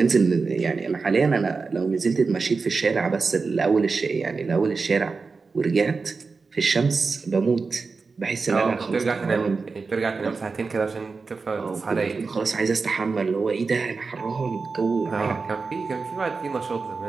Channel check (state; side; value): quieter; left; 4.5 dB